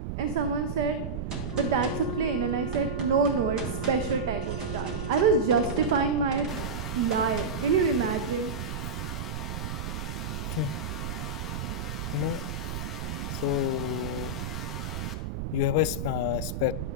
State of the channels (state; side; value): noise; right; rumble, 5 dB below the sound